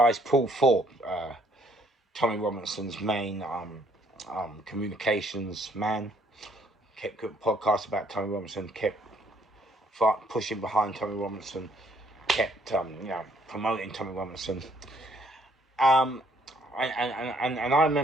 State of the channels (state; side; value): normal; both; correlation 0.65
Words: Paul Thorpe, Tommy Robinson's main communications man, kept good podcasts about Tommy Robinson, kept pushing behind Tommy Robinson, kept promoting Tommy Robinson. And I